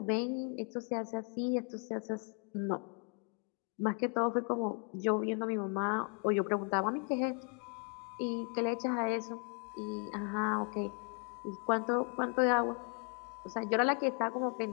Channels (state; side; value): quieter; right; 37.1 dB